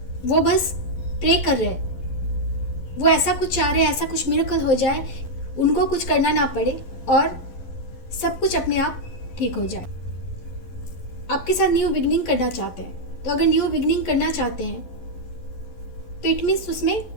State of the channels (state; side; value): late; right; 11 ms